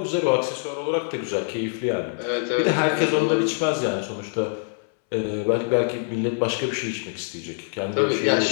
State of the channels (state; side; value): silent; right; 62 dB below the other